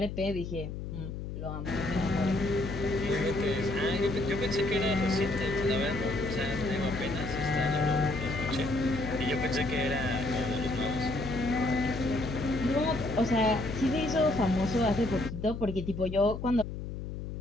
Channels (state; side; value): noise; left; hum, 7 dB below the sound